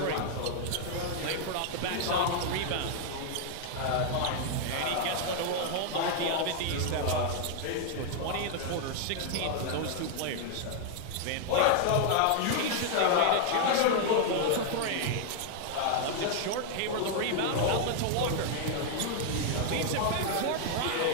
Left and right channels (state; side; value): different; both; correlation 0.00